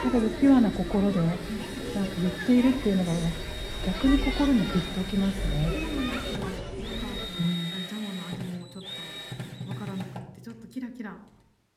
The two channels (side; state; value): both; identical; correlation 1.00